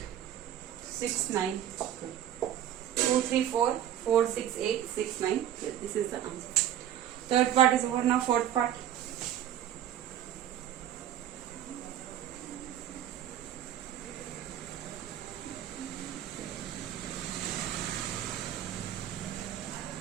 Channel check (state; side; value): quieter; left; 11.0 dB